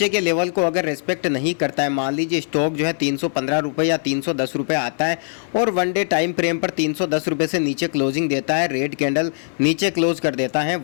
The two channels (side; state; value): right; silent; digital silence